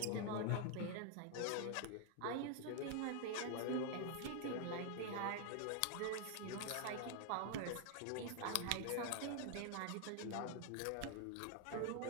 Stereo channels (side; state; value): both; different; correlation 0.00